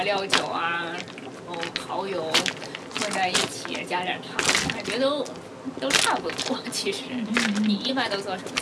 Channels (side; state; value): both; identical; correlation 1.00